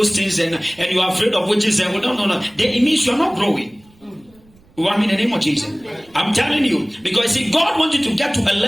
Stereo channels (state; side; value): noise; right; rumble, 30 dB below the sound